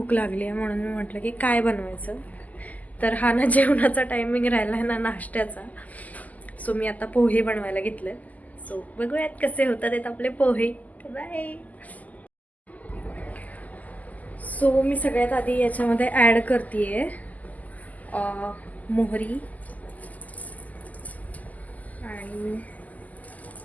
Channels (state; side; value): late; right; 0.078 ms